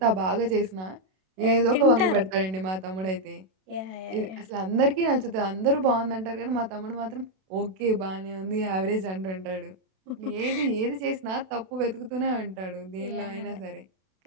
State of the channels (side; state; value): left; late; 32 ms